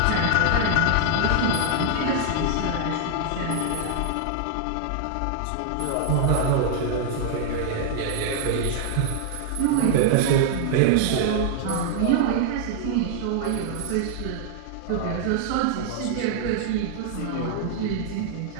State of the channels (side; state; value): both; different; correlation -0.01